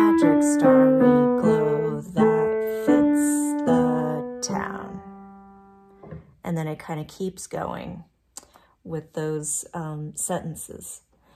starry glow that fits the town. And then it kind of keeps going with those sentences.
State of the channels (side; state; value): both; identical; correlation 1.00